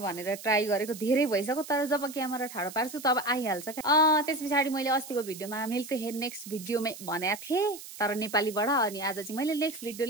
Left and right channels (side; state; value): right; noise; hiss, 14 dB below the sound